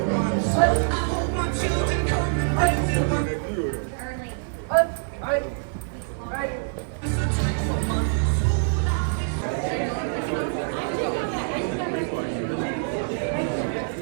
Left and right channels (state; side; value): silent; left; digital silence